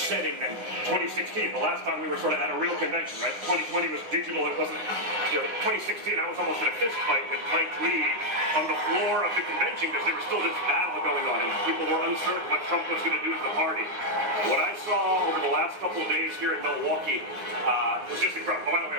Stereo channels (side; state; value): left; late; 9.7 ms